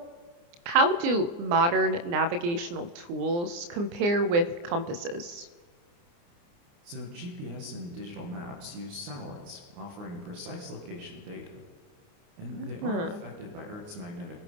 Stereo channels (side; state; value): left; late; 29 ms